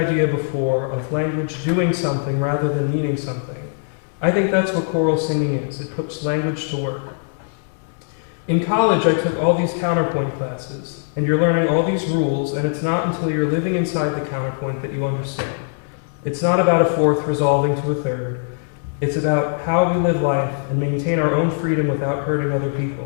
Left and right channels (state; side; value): silent; right; 65 dB below the other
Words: before of language doing something rather than meaning something, I think that's what choral singing is. It puts language to work. In college, I took all these counterpoint classes, and you're learning all these rules, and it's not until you're living inside the counterpoint that you understand. It's not about a fourth resolving to a third. It's about how we live life and maintain our own freedom without hurting other